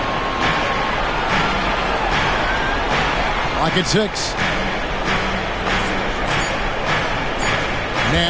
Like it's 6.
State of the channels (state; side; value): identical; both; correlation 1.00